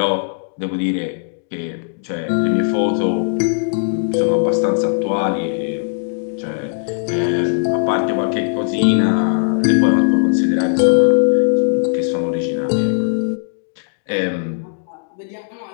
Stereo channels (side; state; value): right; silent; digital silence